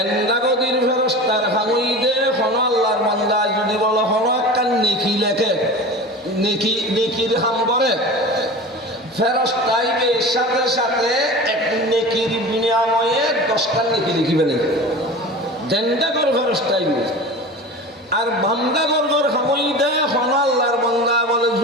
ফেরেশতার হামইদে কোন আল্লাহর বান্দা যদি বলো কোন একটা নেকি লেখে নেকির হাম করে ফেরেশতাইবে সাথে সাথে এক নেকির বিনিময়ে 10টা নেকি লিখিবে না দেন্দাগর ফেরেশতাইবে আর বান্দাগর হামইদে কোন আল্লাহ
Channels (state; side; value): normal; both; correlation 0.33